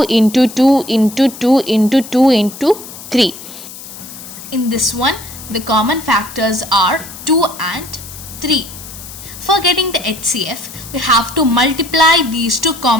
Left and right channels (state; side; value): noise; left; hiss, 14 dB below the sound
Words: into 2 into 2 into 2 into 3. In this one, the common factors are 2 and 3. For getting the HCF, we have to multiply these two